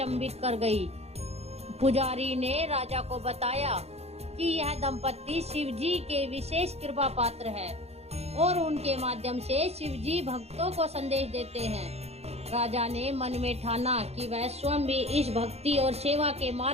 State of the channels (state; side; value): late; left; 0.30 ms